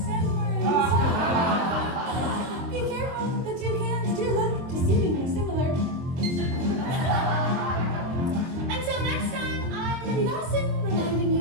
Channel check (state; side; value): late; left; 23 ms